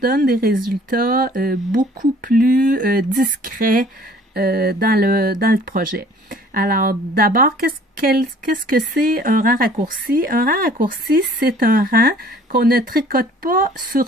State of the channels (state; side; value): normal; both; correlation 0.53